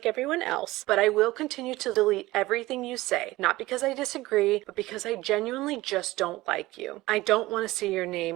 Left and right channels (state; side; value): quieter; left; 18.6 dB